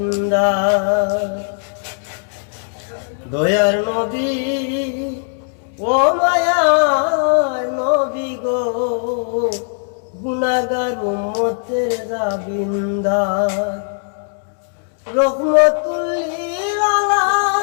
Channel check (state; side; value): silent; right; digital silence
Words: দয়ার নবী ও মায়ার নবী গো, গুনাহগার উম্মতের জাবিন্দার। রহমতুল লিল